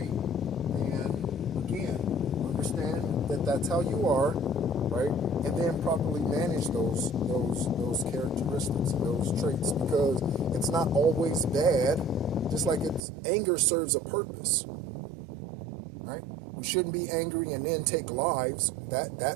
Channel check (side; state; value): left; drops out; at 13.0 s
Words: And again, understand that that's how you are, right? And then properly manage those characteristics and those traits, because it's not always bad. Just like anger serves a purpose, right? You shouldn't be angry and then take lives.